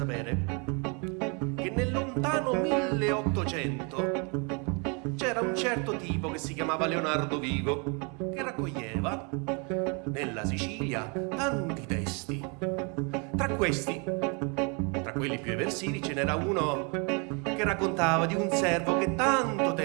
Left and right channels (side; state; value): left; quieter; 33.7 dB